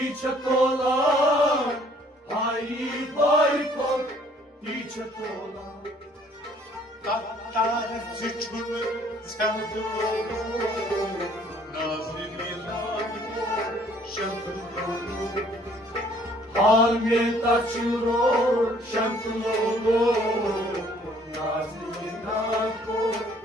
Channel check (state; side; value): normal; both; correlation 0.60